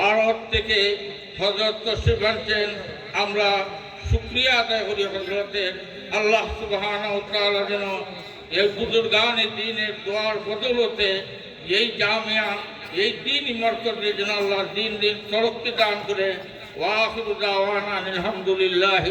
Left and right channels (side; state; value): both; identical; correlation 1.00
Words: থেকে হযরত তশরিফ আনছেন। আমরা শুকরিয়া আদায় করি হযরতের। আল্লাহ সুবহানাহু ওয়া তাআলা যেন এই বুজুর্গানে দ্বীনের দোয়ার বদৌলতে এই জামিয়া, এই দ্বীনি মরকজে যেন আল্লাহ দিন দিন তরক্কি দান করে। ওয়া আখিরু দাওয়ানা আলহামদুলিল্লাহি